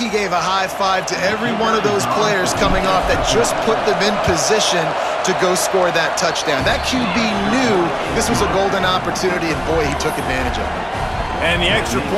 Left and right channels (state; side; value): identical; both; correlation 1.00